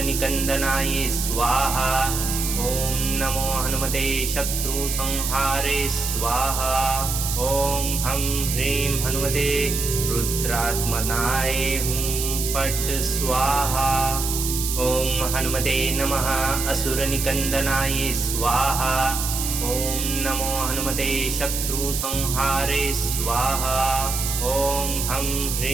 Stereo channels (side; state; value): right; noise; hiss, 3 dB below the sound